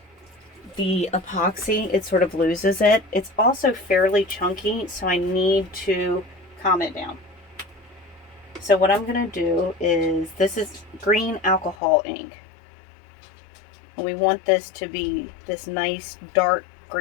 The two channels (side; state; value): right; drops out; at 11.8 s